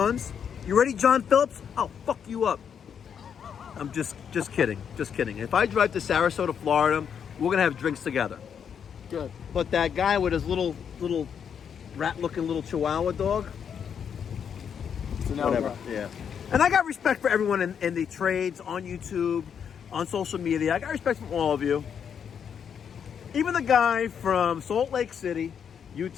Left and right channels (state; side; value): quieter; right; 7.7 dB